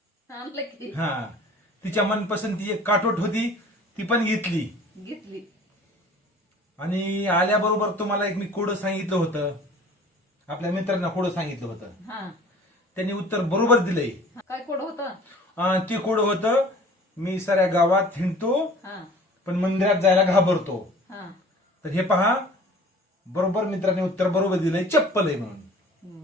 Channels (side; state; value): both; normal; correlation 0.48